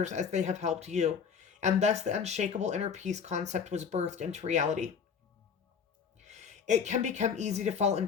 as they have helped you. And thus the unshakable inner peace concept was birthed into reality. It can become easy to fall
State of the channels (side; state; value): right; quieter; 6.6 dB